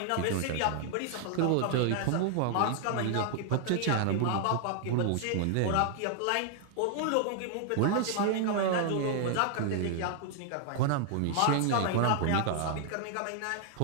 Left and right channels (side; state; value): both; different; correlation 0.00